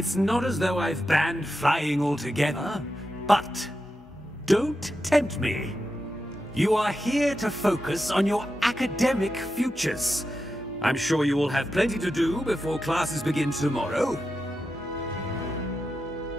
not as though I've banned flying altogether, but don't tempt me. You are here to focus on your academic futures. I'm sure you will have plenty to do before classes begin tomorrow.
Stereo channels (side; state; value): both; normal; correlation 0.89